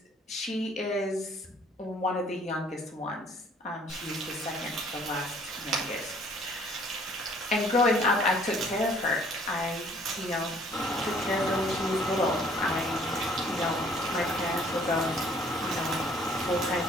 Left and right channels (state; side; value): normal; both; correlation 0.58